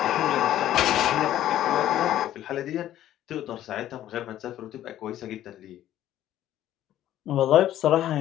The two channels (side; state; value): right; quieter; 12.6 dB